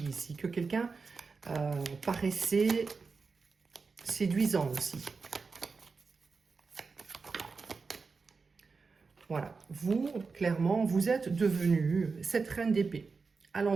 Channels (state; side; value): quieter; left; 4.6 dB